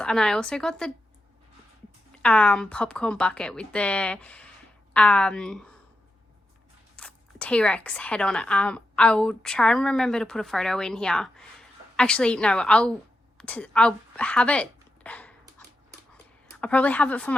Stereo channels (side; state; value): both; normal; correlation 0.88